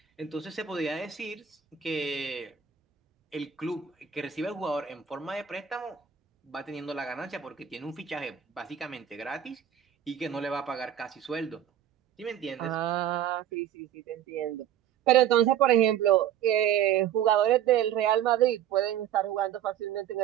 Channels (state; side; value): quieter; left; 9.8 dB